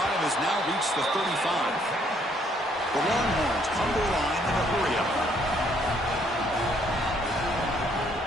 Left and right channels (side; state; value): both; normal; correlation 0.67